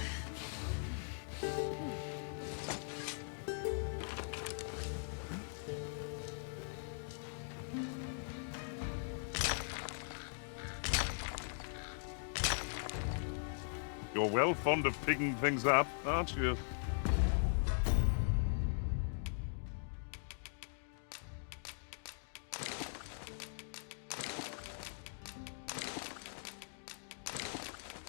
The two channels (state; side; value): silent; right; digital silence